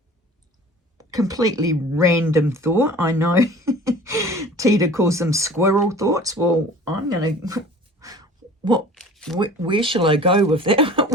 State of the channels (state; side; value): normal; both; correlation 0.44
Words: Completely random thought, I know. Tita calls them squirrel thoughts. Well, I'm going to... Where shall I go with that?